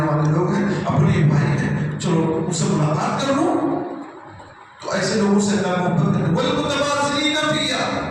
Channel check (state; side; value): identical; both; correlation 1.00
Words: والے لوگ ہیں، اپنے بھائی ہیں، چلو ان سے ملاقات کر لوں. تو ایسے لوگوں سے اللہ محبت کرے. والمتباذلین فیا،